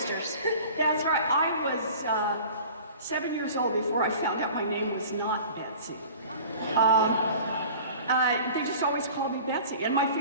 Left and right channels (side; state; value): both; inverted; correlation -0.42